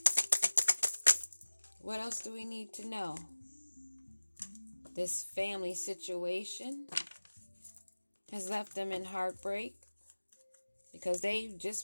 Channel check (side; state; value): both; inverted; correlation -1.00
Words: What else do we need to know? This family situation has left them in heartbreak because they